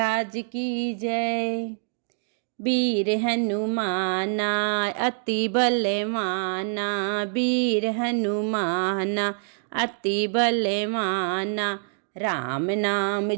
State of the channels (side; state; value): left; silent; digital silence